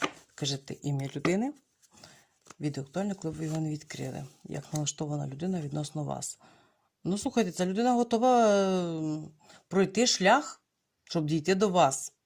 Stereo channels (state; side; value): identical; both; correlation 1.00